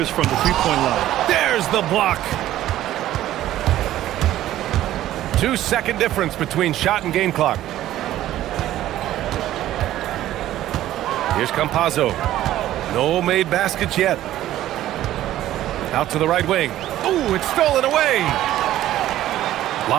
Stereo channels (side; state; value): left; quieter; 13.6 dB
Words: from the three-point line. There's the block. 2-second difference between shot and game clock. Here's Campazzo. No made baskets yet. Out to the right wing. Ooh, it's stolen away.